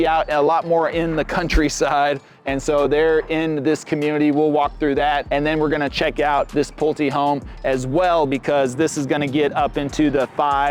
out a lot more in the countryside. And so they're in this community. We'll walk through that. And then we're gonna check out this Pulte home as well, because this is gonna get up into the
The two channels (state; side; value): identical; both; correlation 1.00